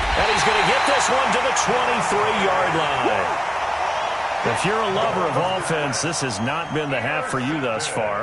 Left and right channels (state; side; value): identical; both; correlation 1.00